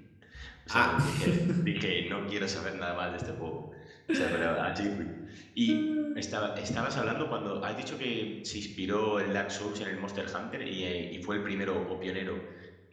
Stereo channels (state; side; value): identical; both; correlation 1.00